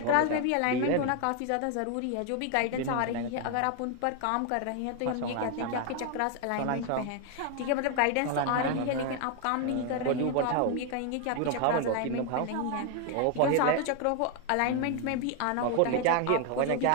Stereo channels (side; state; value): both; different; correlation 0.01